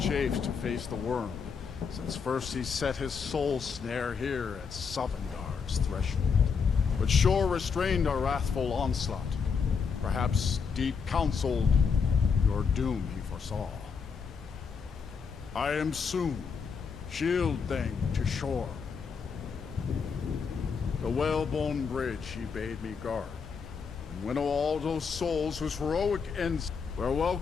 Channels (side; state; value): right; quieter; 5.8 dB